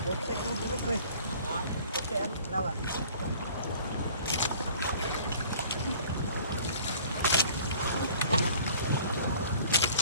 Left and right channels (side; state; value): both; inverted; correlation -0.51